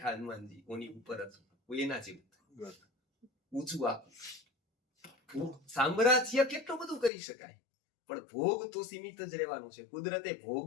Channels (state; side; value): drops out; right; at 7.1 s